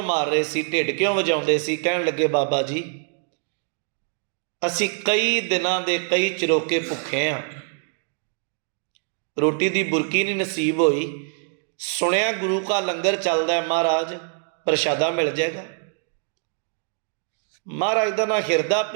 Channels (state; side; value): silent; left; 61 dB below the other